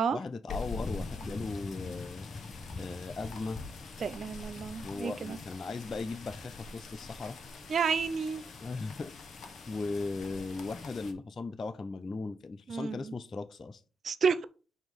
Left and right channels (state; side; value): normal; both; correlation 0.82